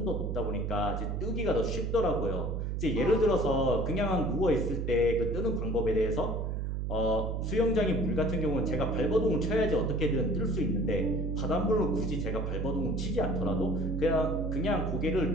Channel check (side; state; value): right; noise; hum, 2 dB below the sound